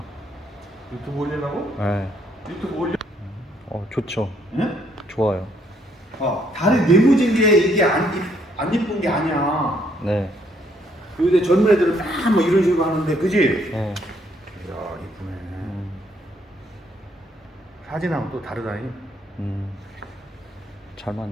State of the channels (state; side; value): normal; both; correlation 0.69